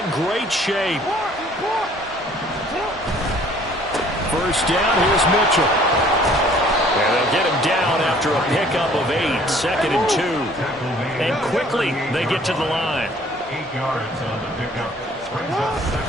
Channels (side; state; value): both; normal; correlation 0.56